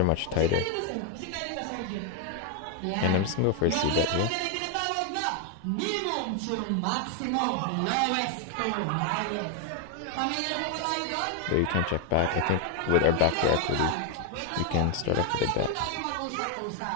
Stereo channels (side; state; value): both; different; correlation 0.01